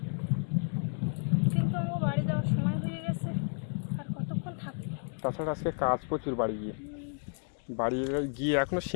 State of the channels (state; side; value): silent; right; 57 dB below the other